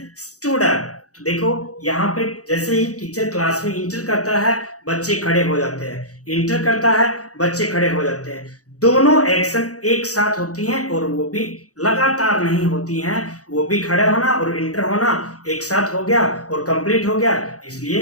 stood up. तो देखो यहाँ पे जैसे ही टीचर क्लास में इंटर करता है बच्चे खड़े हो जाते हैं, इंटर करता है बच्चे खड़े हो जाते हैं। दोनों एक्शन एक साथ होती हैं और वो भी लगातार नहीं होती हैं, वो भी खड़े होना और इंटर होना एक साथ हो गया और कंप्लीट हो गया,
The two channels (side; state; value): right; late; 0.66 ms